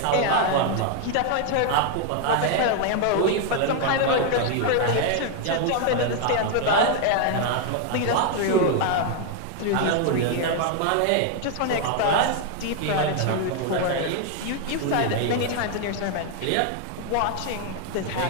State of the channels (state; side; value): different; both; correlation 0.01